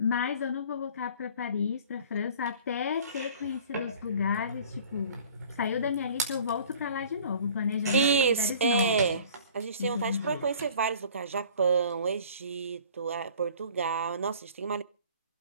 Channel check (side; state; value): both; inverted; correlation -0.49